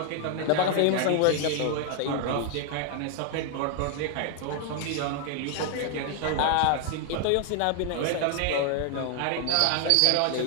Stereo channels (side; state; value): both; different; correlation 0.00